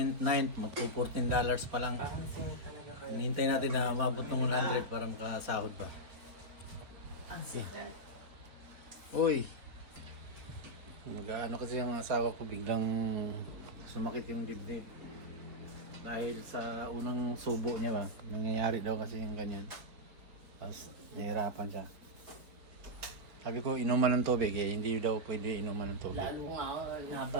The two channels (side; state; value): left; late; 4.2 ms